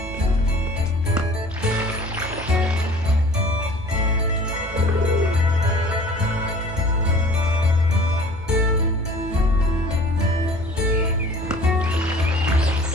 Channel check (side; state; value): both; normal; correlation 0.48